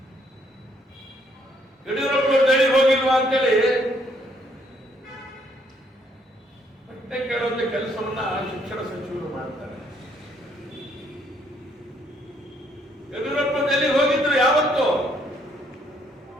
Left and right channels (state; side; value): normal; both; correlation 0.68